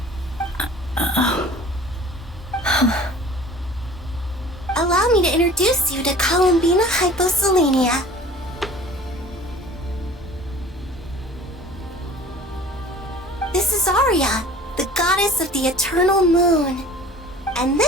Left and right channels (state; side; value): normal; both; correlation 0.46